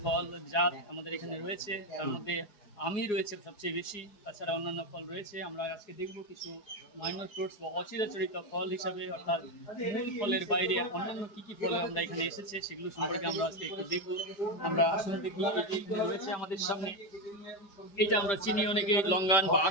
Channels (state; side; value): late; right; 4.8 ms